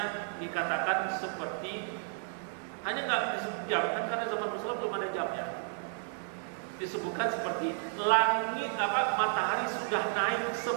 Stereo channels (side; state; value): left; silent; 55 dB below the other